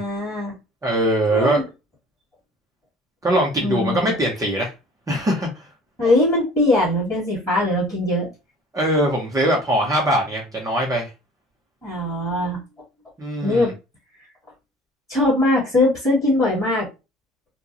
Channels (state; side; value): normal; both; correlation 0.49